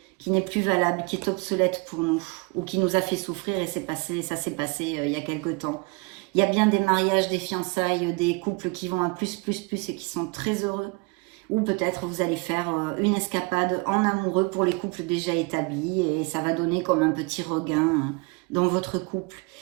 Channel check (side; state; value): left; quieter; 28.5 dB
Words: qui n'est plus valable, qui est obsolète pour nous, ou qui nous a fait souffrir et ça s'est passé il y a quelque temps. Il y a bien des mariages, des fiançailles, des couples qui vont à plus et qui sont très heureux. Ou peut-être vous allez faire une escapade en amoureux pour les couples déjà établis et ça va donner comme un petit regain dans votre couple.